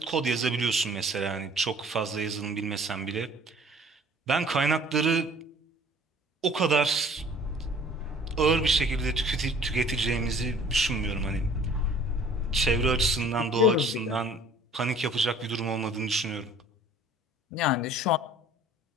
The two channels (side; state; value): both; normal; correlation 0.52